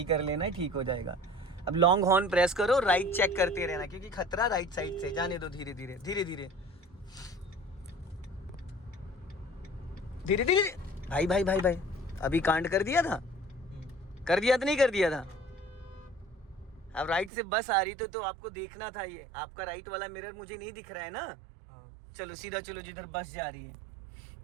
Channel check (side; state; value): left; drops out; at 17.3 s